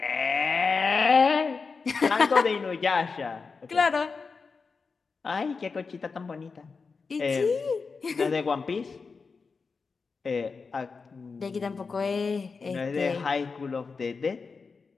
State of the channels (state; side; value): quieter; right; 4.8 dB